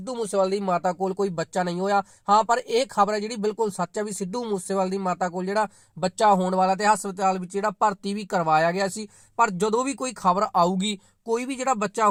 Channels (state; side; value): identical; both; correlation 1.00